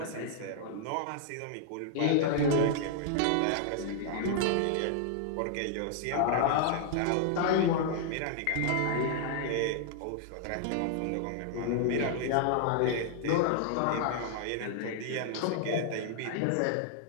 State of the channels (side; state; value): both; different; correlation -0.01